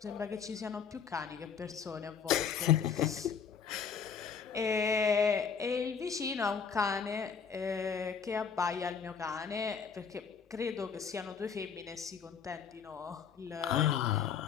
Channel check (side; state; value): right; quieter; 6.6 dB